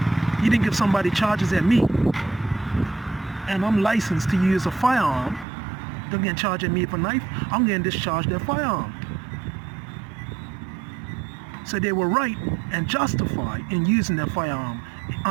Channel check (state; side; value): drops out; left; at 5.5 s